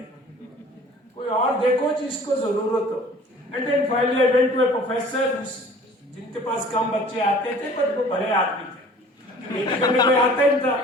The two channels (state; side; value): normal; both; correlation 0.49